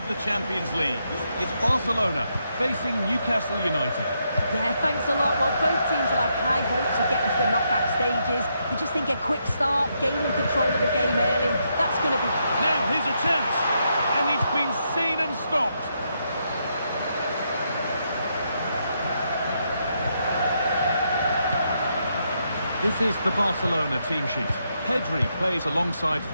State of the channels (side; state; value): both; inverted; correlation -0.79